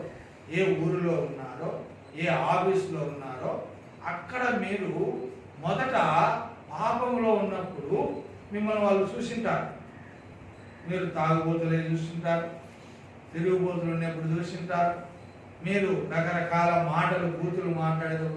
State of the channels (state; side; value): identical; both; correlation 1.00